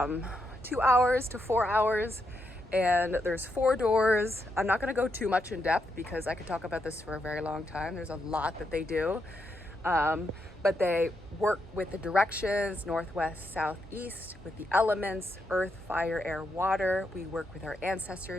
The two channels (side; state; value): both; normal; correlation 0.81